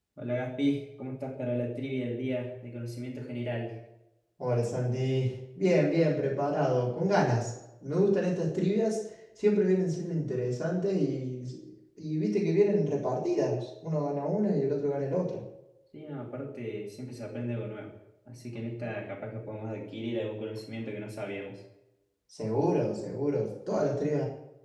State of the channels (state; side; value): identical; both; correlation 1.00